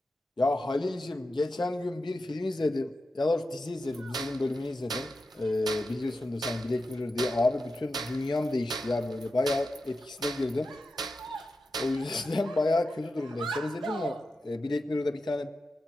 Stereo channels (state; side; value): normal; both; correlation 0.90